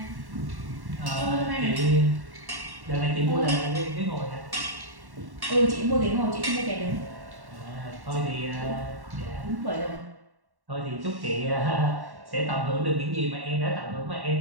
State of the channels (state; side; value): late; left; 1.1 ms